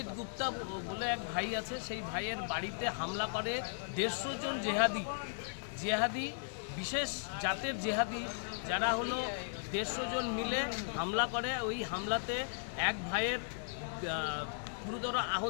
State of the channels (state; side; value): silent; right; 53 dB below the other